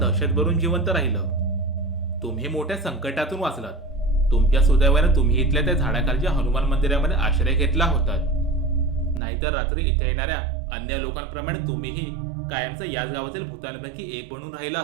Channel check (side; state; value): left; drops out; at 9.2 s